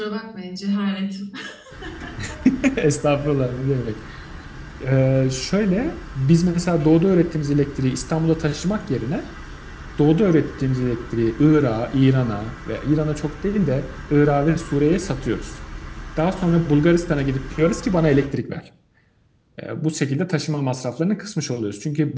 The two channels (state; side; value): identical; both; correlation 1.00